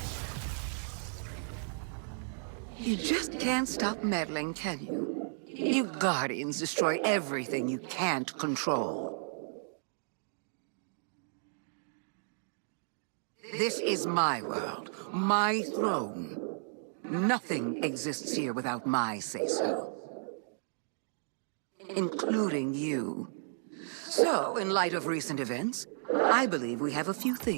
You just can't stop meddling, can you? You Guardians destroy everything you can't control. This is my world, my throne. Nothing exists here without my say-so. Including you. So, in light of recent events, I believe we have a few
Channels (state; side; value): silent; left; digital silence